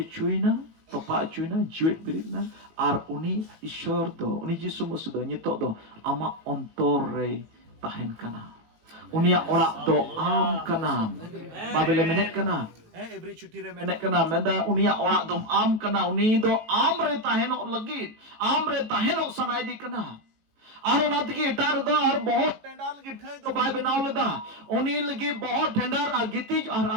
चुइना तोपा चुइना जीवित बिरिना आर उनी ईश्वर दो उनी यीशु मसीह दो नितो दो आमा अंतर रे ताहेन कना उनिया ओड़ा दो आम कना बाबेले मेनेक कना एवरी छुट्टी रे मेनेक कना मेंदा उनिया ओड़ा दो आम कना उनी दो आम रे ताहेनो लगी आम रे ताहेनो सनायदी कना और उनात की इटार दो और बहुत टेंडर लगी ठई दो बाय बनाव लेदा उनी लगी बहुत टेंडर गितिज और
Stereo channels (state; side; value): late; left; 18 ms